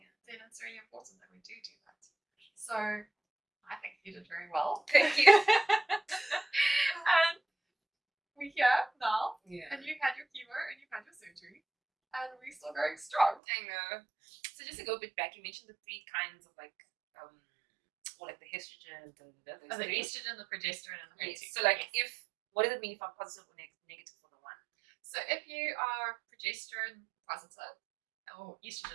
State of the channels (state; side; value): drops out; left; at 13.4 s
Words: then it's really important that we do that. So I think you did very well. Thank you. And we're here now, Yeah. and you've had your chemo and you've had your surgery, and we're still going strong. I know. So just to go a bit back, you mentioned the three kinds of like or like the estrogen, The estrogen, the progesterone, and the HER2. So like what does it mean if I'm positive or negative for the one? So if you are progesterone positive or